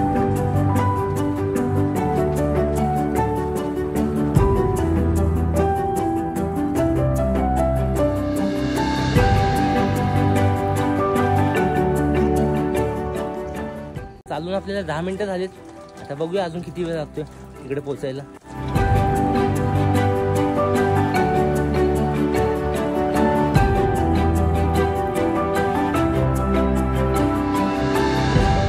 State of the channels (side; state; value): both; identical; correlation 1.00